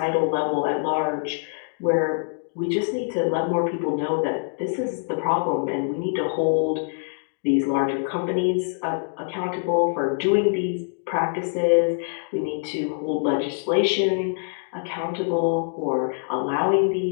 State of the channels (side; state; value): right; silent; 62 dB below the other